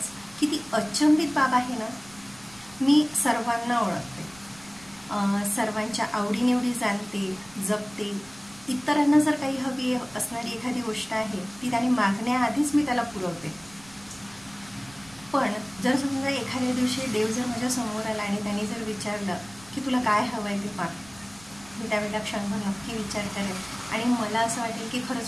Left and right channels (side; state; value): right; noise; rumble, 23 dB below the sound